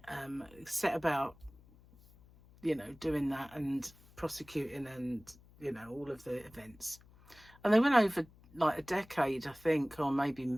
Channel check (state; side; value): noise; left; hum, 25 dB below the sound